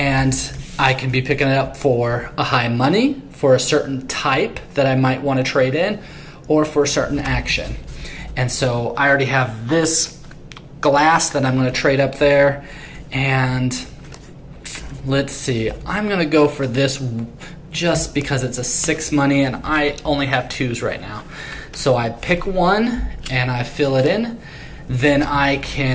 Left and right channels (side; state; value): both; identical; correlation 1.00